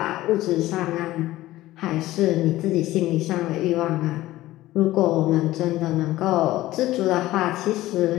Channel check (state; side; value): quieter; right; 16.4 dB